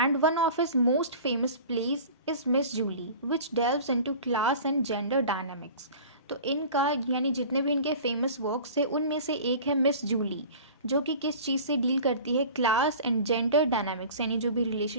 one of his most famous plays is Miss Julie which delves into class and gender dynamics. तो इनका यानी जितने भी इनके फेमस वर्क्स थे उनमें से एक है मिस जूली, जो कि किस चीज़ से डील करती है, क्लास एंड जेंडर डायनामिक्स, यानी जो भी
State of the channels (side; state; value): both; inverted; correlation -0.40